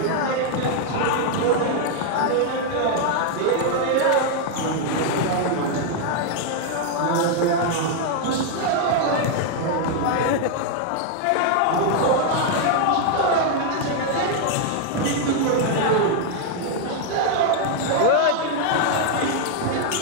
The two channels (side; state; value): both; different; correlation 0.00